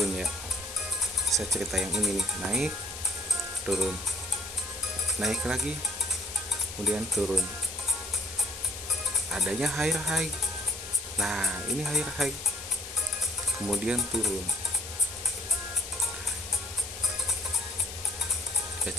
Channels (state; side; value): noise; left; hiss, 10 dB below the sound